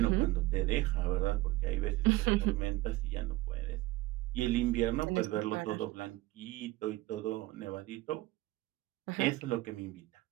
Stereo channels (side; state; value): left; quieter; 18.7 dB